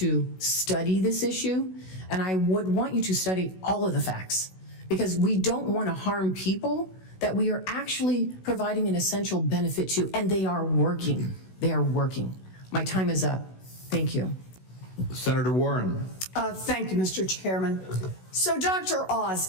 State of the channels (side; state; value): right; late; 16 ms